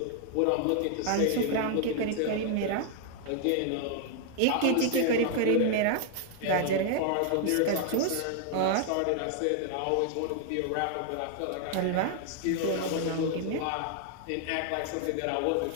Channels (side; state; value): both; different; correlation 0.00